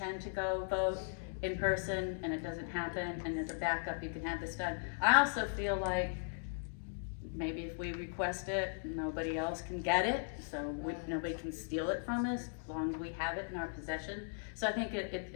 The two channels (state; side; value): silent; right; digital silence